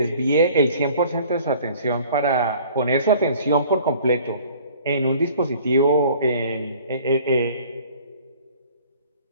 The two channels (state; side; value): inverted; both; correlation -0.51